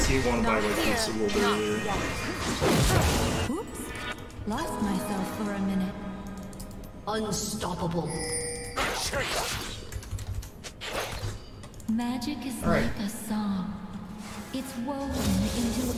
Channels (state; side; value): identical; both; correlation 1.00